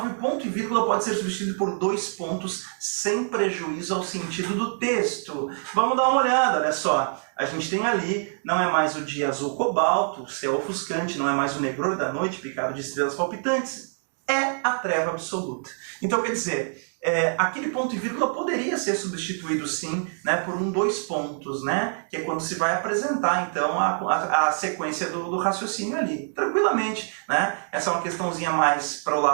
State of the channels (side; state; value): left; silent; digital silence